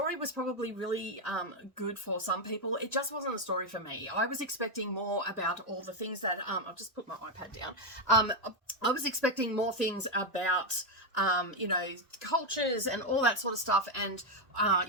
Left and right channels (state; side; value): normal; both; correlation 0.04